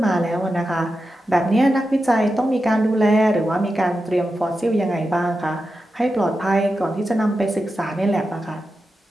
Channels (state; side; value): normal; both; correlation 0.90